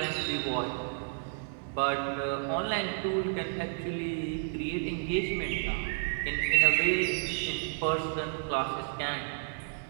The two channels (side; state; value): left; silent; digital silence